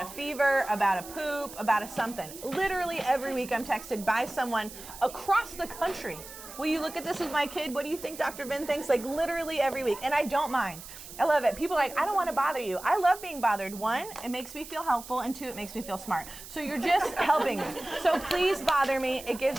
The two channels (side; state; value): right; noise; hiss, 14 dB below the sound